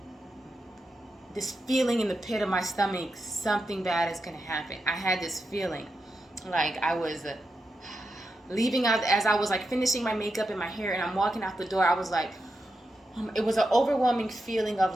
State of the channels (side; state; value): both; normal; correlation 0.87